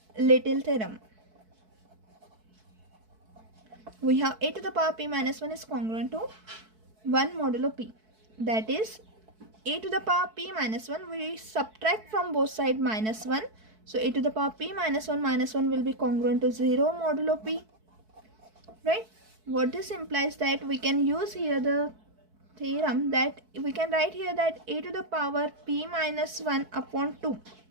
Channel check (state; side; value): late; left; 4.6 ms